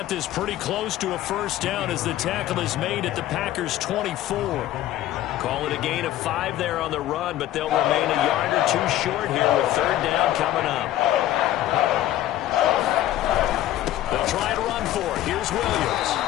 this pretty close to a first down as the tackle is made at the Packers' 24. Call it a gain of 5 there on the run, but they'll remain a yard or two short here with third down coming up. They'll try to run for it. Here's Williams.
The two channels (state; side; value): quieter; right; 13.6 dB